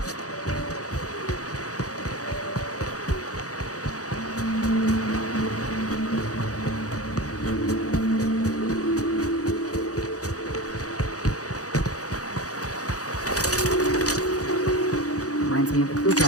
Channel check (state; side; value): late; right; 0.67 ms